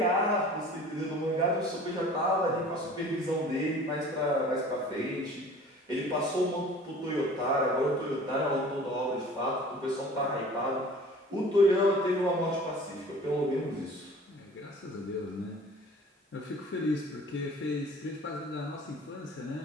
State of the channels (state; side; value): normal; both; correlation 0.45